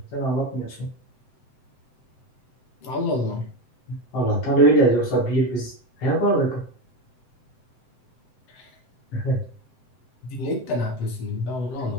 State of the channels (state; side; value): late; right; 7.8 ms